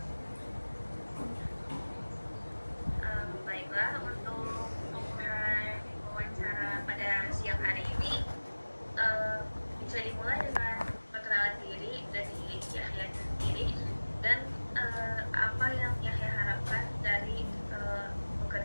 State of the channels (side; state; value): both; inverted; correlation -1.00